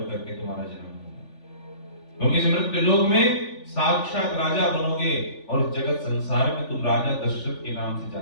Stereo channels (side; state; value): right; late; 3.4 ms